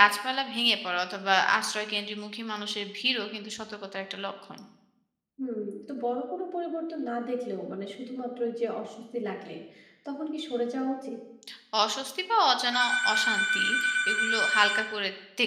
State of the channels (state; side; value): identical; both; correlation 1.00